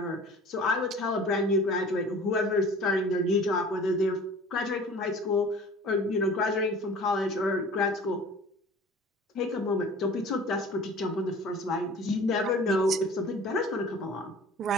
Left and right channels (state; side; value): normal; both; correlation 0.44